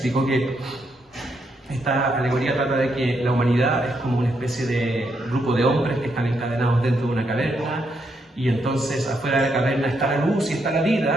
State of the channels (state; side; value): normal; both; correlation 0.78